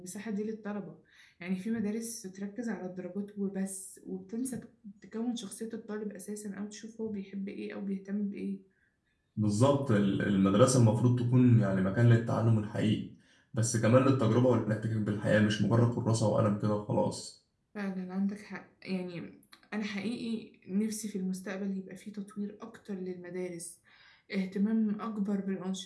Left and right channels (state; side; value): identical; both; correlation 1.00